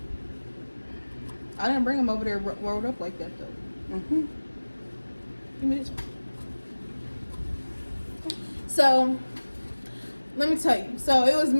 I didn't bring them over there rolled up like that though. Give me this one. So, let me tell you. So, it was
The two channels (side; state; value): both; inverted; correlation -1.00